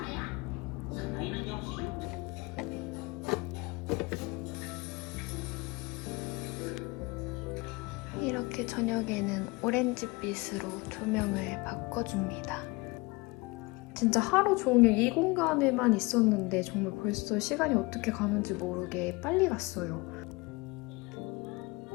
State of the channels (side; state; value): right; quieter; 24.8 dB